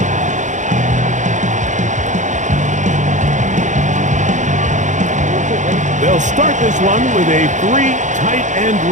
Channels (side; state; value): left; late; 0.35 ms